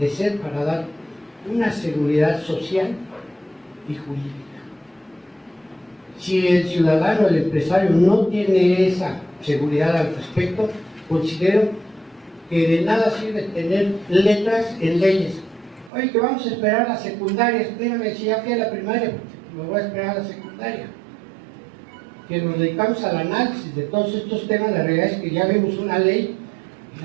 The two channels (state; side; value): drops out; left; at 15.9 s